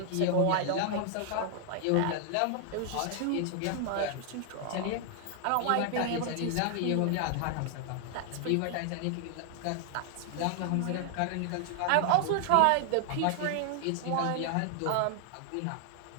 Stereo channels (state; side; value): different; both; correlation 0.00